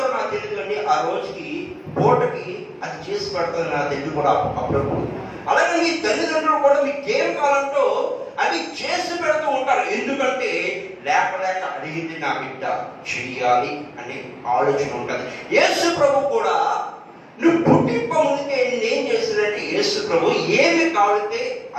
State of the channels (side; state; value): both; identical; correlation 1.00